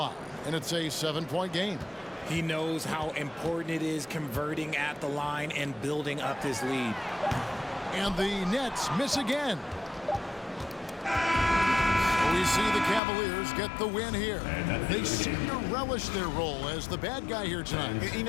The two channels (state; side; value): drops out; right; at 13.0 s